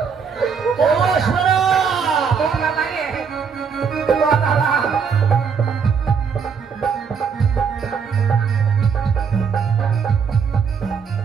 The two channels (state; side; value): quieter; left; 6.2 dB